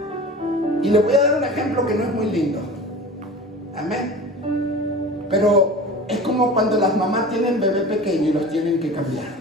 Y le voy a dar un ejemplo que no es muy lindo. Amén. Pero es como cuando las mamás tienen bebé pequeño y los tienen que cambiar.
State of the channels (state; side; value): normal; both; correlation 0.36